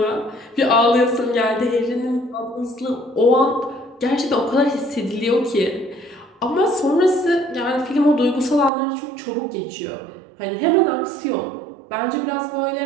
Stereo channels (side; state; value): left; drops out; at 8.7 s